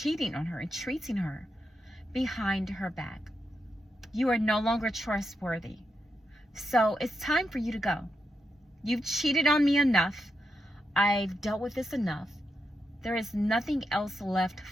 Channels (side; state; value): both; normal; correlation 0.85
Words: on her and treating her behind her back. You are no longer trustworthy. So it's time for you to go. You've cheated on me enough. I've dealt with this enough. There is nothing else left